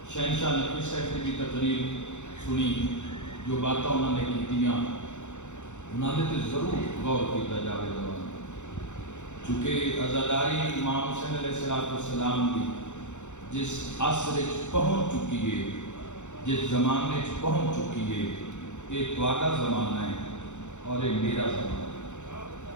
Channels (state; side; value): late; right; 0.84 ms